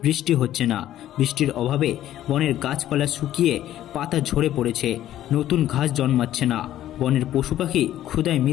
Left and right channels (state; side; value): quieter; right; 12.7 dB